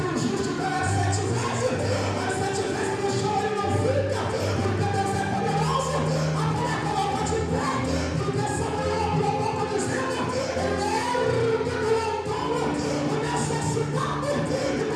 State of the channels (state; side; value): identical; both; correlation 1.00